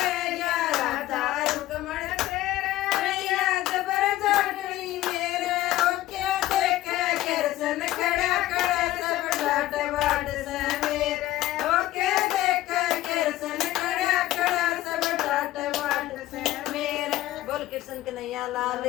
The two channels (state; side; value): quieter; right; 15.4 dB